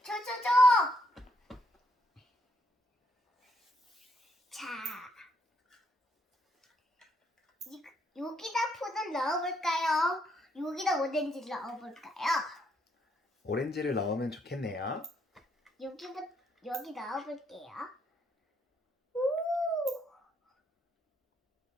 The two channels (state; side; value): normal; both; correlation 0.73